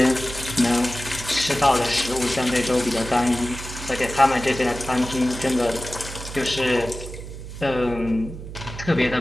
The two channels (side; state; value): right; noise; hum, 11 dB below the sound